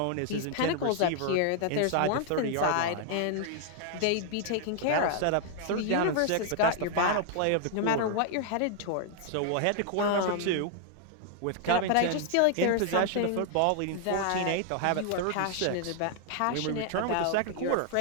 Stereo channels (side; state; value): both; different; correlation 0.00